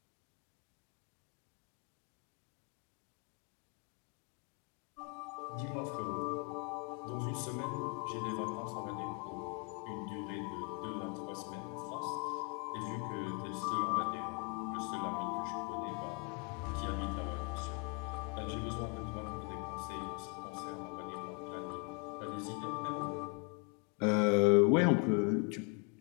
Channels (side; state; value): right; quieter; 34.8 dB